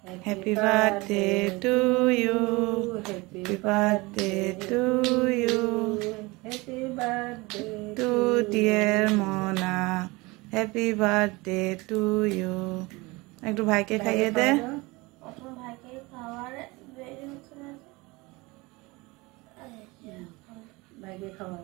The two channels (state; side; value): quieter; left; 23.7 dB